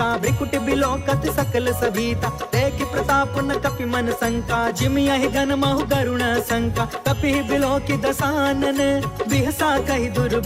भ्रिकुट बिलोकत सकल सभीता। देखि प्रताप न कपि मन शंका, जिम यहि गन महु गरुण शंका। कपि बिलोकि दसानन, बिहसा कहि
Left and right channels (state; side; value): identical; both; correlation 1.00